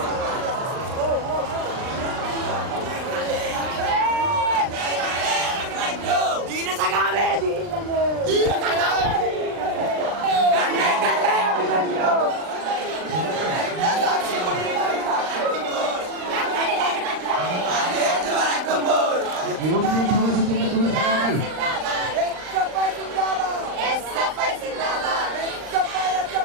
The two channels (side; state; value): left; late; 39 ms